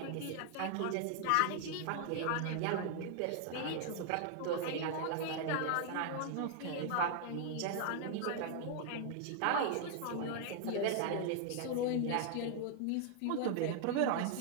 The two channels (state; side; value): different; both; correlation 0.00